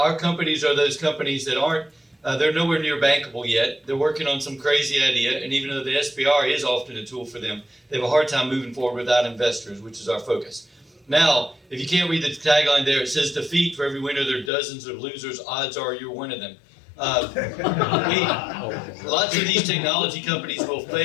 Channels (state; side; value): drops out; right; at 14.5 s